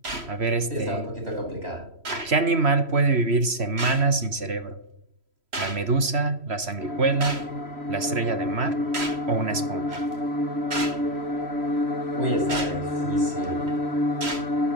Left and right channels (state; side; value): late; left; 3.1 ms